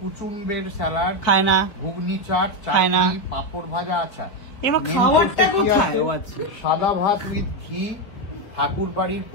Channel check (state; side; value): late; right; 4.6 ms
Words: স্যালাড খায় না। ঘুগনি চাট, চাটনি, পাঁপড় ভাজা। আচ্ছা, এবার খাবারটা কোথায়? সাদা ভাত উইথ ঘি, ঠাকুর বাড়ির